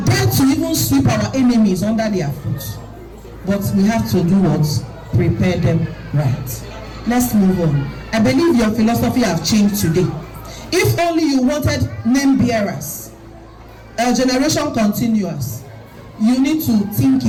to even sweep our enemies under their foot. But we have to do what? Prepare them right. Let's move on. I believe your philosophy have changed today. If only you wanted name bearers, a generation continuous, you need to think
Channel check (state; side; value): identical; both; correlation 1.00